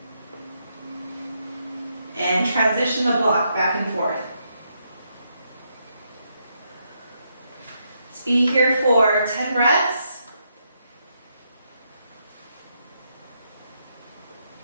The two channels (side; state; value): both; inverted; correlation -0.78